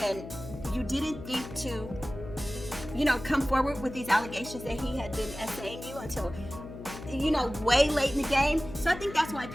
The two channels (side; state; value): left; noise; hum, 12 dB below the sound